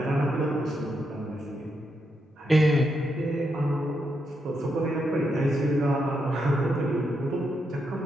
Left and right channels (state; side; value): normal; both; correlation 0.82